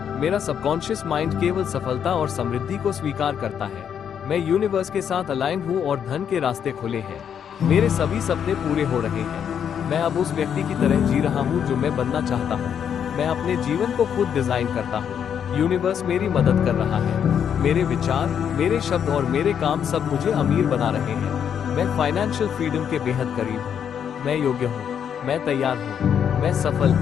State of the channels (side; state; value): right; quieter; 8.3 dB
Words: मेरा सबकॉन्शियस माइंड केवल सफलता और समृद्धि को स्वीकार करता है। मैं यूनिवर्स के साथ अलाइन हूँ और धन के रास्ते खुले हैं। मेरे सभी सपने पूरे हो रहे हैं। मैं अब उस व्यक्ति की तरह जी रहा हूँ जो मैं बनना चाहता हूँ। मैं अपने जीवन को खुद डिजाइन करता हूँ। यूनिवर्स मेरी मदद कर रहा है। मेरे विचार, मेरे शब्द और मेरे काम सब मुझे अमीर बना रहे हैं। मैं फाइनेंशियल फ्रीडम के बेहद करीब हूँ। मैं योग्य हूँ। मैं तैयार हूँ। मैं सफल